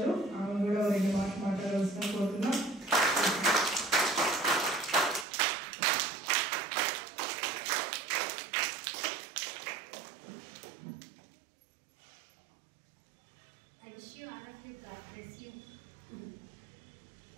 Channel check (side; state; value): left; drops out; at 5.2 s